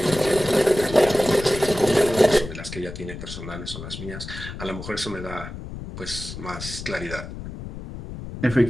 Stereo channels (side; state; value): left; noise; rumble, 10 dB below the sound